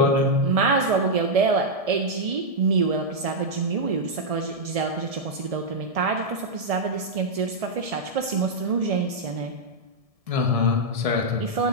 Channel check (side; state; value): left; late; 1.7 ms